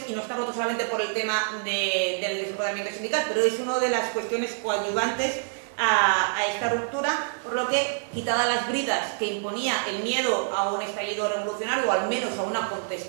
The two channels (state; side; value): silent; left; 61 dB below the other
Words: y no está roto solamente por el tema del desempoderamiento sindical, pero es una de las cuestiones coadyuvantes a esta ruptura, por lo que, quitadas las bridas que imponía el miedo a un estallido revolucionario o al menos a una